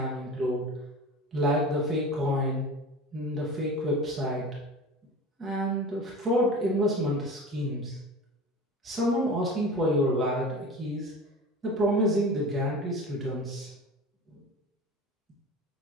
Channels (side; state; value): both; normal; correlation 0.34